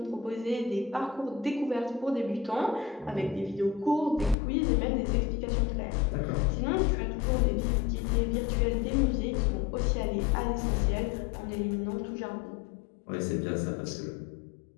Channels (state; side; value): drops out; right; at 4.4 s